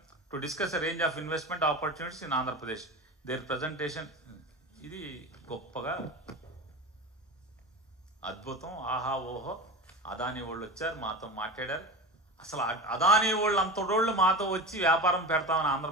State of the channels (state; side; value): normal; both; correlation 0.29